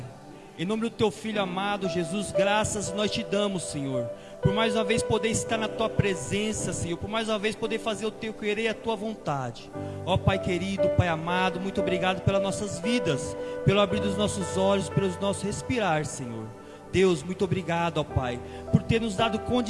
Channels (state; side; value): identical; both; correlation 1.00